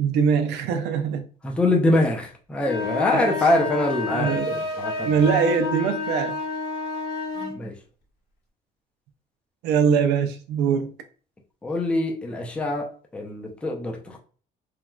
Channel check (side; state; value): both; normal; correlation 0.52